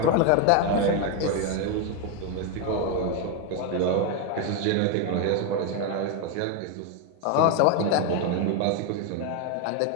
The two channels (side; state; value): both; different; correlation 0.01